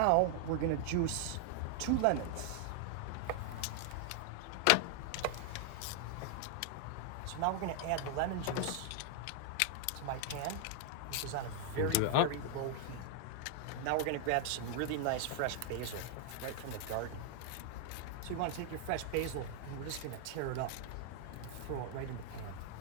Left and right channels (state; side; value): different; both; correlation 0.00